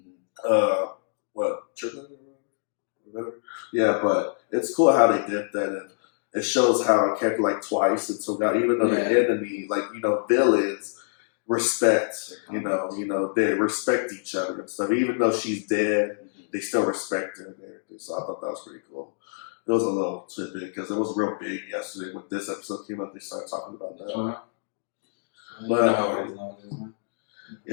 yeah, but it's cool how they did that, and it shows how a character like Twice and Toga, even though they're enemy, villains respect, they respect each other and stuff. Even though she's dead, they still respect her and everything. So I thought that was pretty cool. It was a little tidbit because it was real big yesterday when this episode came out. They started talking about that.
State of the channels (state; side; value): silent; right; digital silence